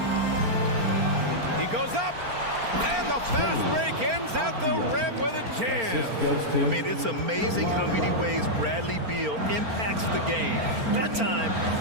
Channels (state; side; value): late; left; 4.4 ms